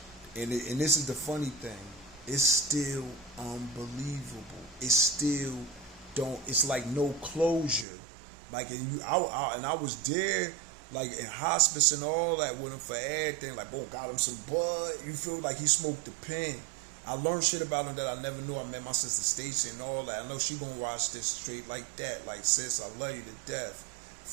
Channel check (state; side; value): drops out; left; at 7.9 s